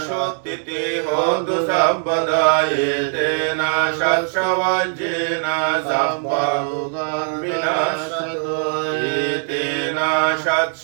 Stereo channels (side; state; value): left; silent; 61 dB below the other